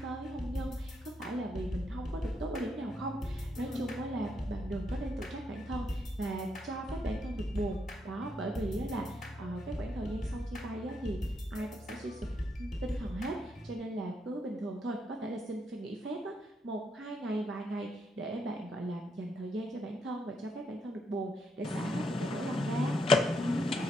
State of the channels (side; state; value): both; normal; correlation 0.77